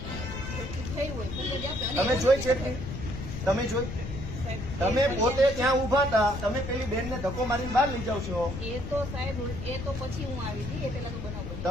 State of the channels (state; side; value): noise; left; rumble, 7 dB below the sound